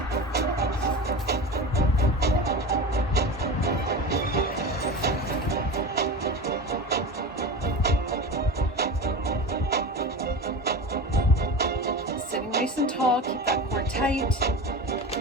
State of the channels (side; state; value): both; normal; correlation 0.28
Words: Sitting nice and tall. Keep that core tight.